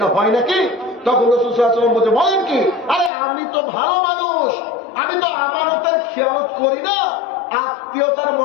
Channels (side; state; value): right; drops out; at 3.1 s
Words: হয় নাকি? তখন রাসূল সাল্লাল্লাহু আলাইহি ওয়াসাল্লাম বলছে, বলেন কি? আরে আমি তো ভালো মানুষ, আমি তো আমানতের খেয়ানত করি না, আত্মীয়তার